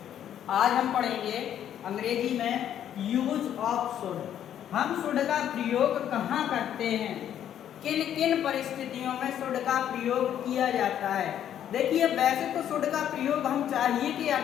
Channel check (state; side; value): quieter; right; 10.2 dB